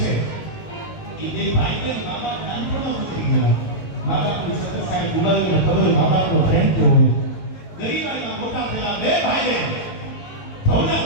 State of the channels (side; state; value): right; late; 19 ms